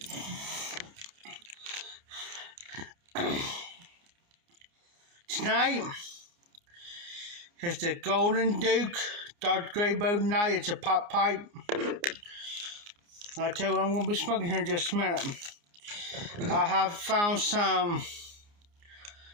Tonight is the Golden Duke Dr. Graybow night. It's a pop pipe. I'll tell you what I'm going to be smoking here in just a minute. I have found some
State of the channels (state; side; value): late; left; 29 ms